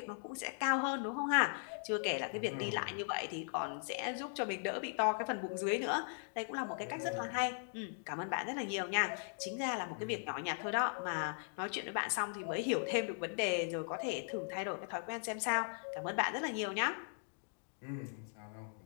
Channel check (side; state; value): right; silent; digital silence